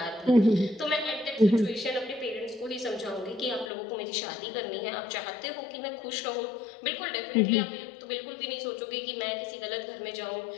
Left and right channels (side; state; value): right; drops out; at 3.7 s